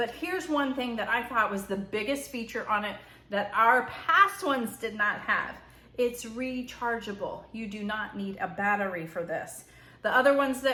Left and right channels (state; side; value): identical; both; correlation 1.00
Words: here's one thing that I thought was the biggest feature on it that our past ones did not have. It's rechargeable. You do not need a battery for this. The other ones